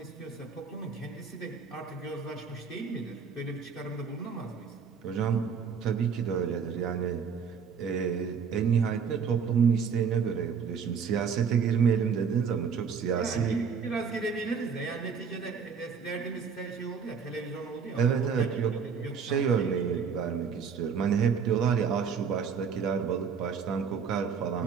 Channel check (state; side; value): quieter; left; 6.3 dB